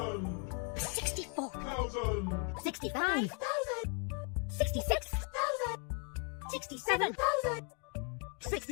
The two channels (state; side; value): quieter; right; 35.0 dB